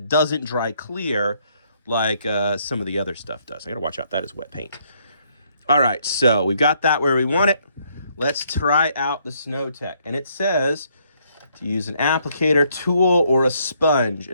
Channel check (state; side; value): inverted; both; correlation -0.69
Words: doesn't dry clear like some of the other stuff does. I got to watch out. That is wet paint. All right, so we've got that where we want it. Let's try out the Snow-Tex. And it says to use an applicator tool or a sponge.